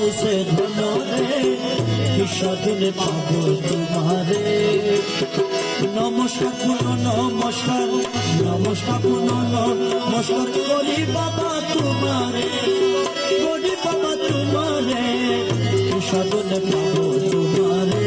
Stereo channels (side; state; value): both; identical; correlation 1.00